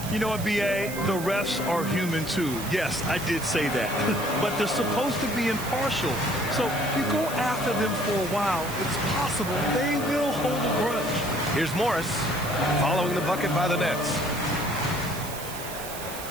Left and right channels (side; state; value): right; noise; hiss, 11 dB below the sound